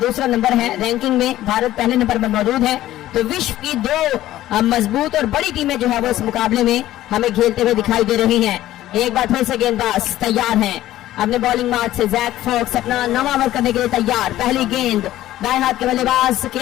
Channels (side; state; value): right; quieter; 14.3 dB